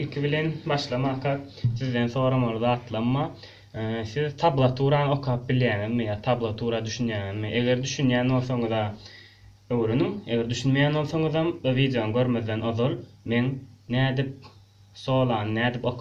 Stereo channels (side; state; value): both; identical; correlation 1.00